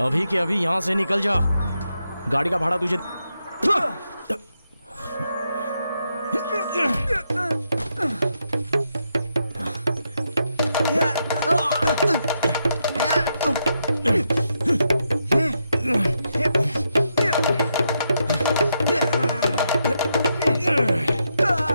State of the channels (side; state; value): both; inverted; correlation -0.82